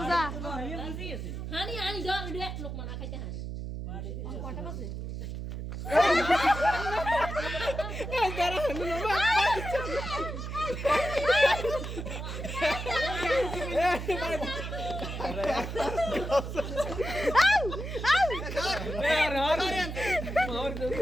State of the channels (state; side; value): noise; right; hum, 6 dB below the sound